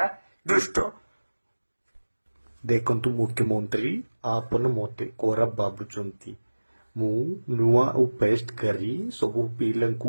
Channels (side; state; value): both; inverted; correlation -1.00